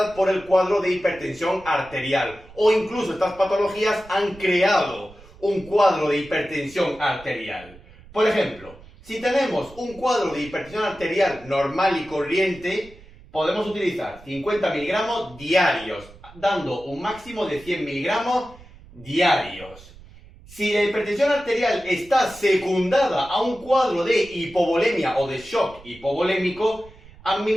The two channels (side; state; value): right; noise; rumble, 22 dB below the sound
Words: por el cuadro de hipertensión arterial, o incluso estas patologías han creado un cuadro de hipertensión arterial. Por ejemplo, si tenemos un cuadro de hipertensión arterial normal y corriente, podemos utilizar 50 miligramos diarios, dando un máximo de 100 miligramos diarios. Si la hipertensión arterial está secundada a un cuadro de hipovolemia o de shock hipovolémico,